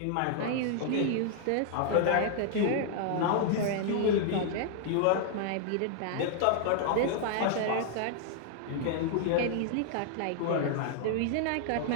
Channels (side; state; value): both; different; correlation 0.00